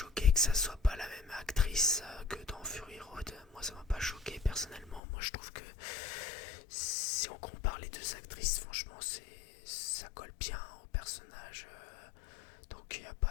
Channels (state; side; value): drops out; right; at 5.0 s